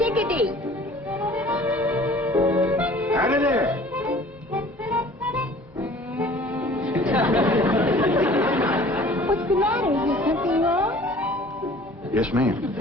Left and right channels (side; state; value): both; normal; correlation 0.49